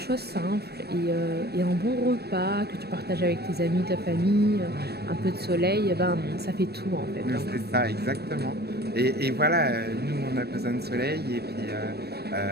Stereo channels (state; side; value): late; left; 0.47 ms